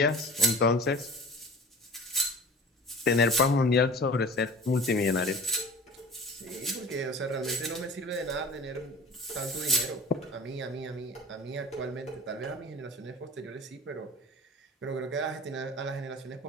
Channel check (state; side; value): normal; both; correlation 0.40